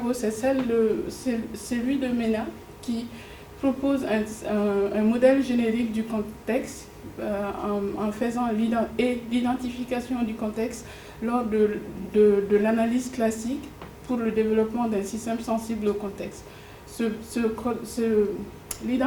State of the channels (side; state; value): both; identical; correlation 1.00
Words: c'est celui de MENA, qui propose un modèle générique du contexte en faisant l'identification du contexte lors de l'analyse classique pour le développement d'un système sensible au contexte.